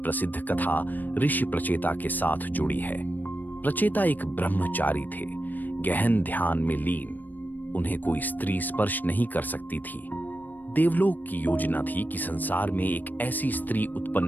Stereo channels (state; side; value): late; right; 0.088 ms